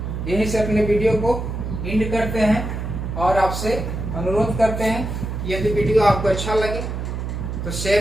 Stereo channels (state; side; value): noise; right; hum, 4 dB below the sound